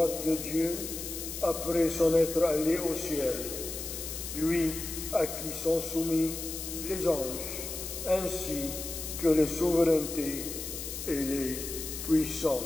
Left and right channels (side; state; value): left; noise; hiss, 7 dB below the sound